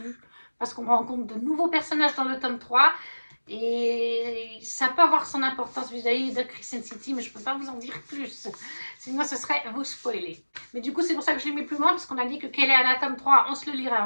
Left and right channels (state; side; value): inverted; both; correlation -1.00